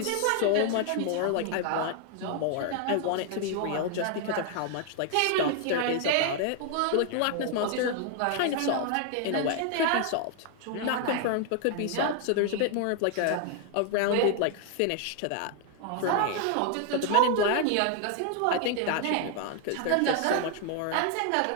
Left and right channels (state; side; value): different; both; correlation 0.00